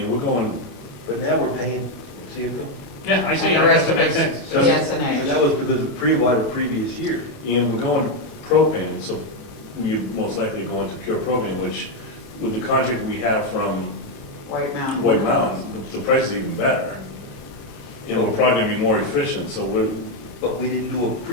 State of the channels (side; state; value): right; late; 37 ms